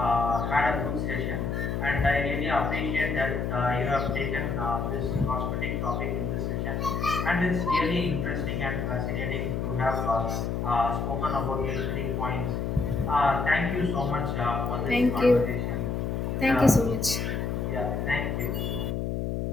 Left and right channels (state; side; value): noise; left; hum, 1 dB below the sound